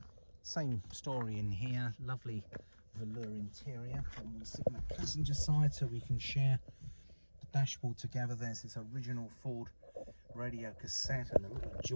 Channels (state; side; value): inverted; both; correlation -1.00